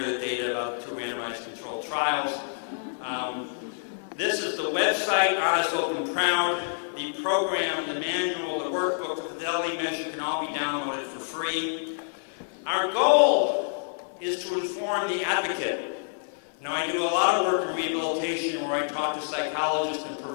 the data about 2 randomized controlled trials. This is the website, Honest, Open, Proud. The program, the manual, the workbook, the fidelity measure can all be downloaded for free. Our goal is to inform the advocate. Now, I do a lot of work in rehabilitation where I talk to psychologists and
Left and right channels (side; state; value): right; silent; 60 dB below the other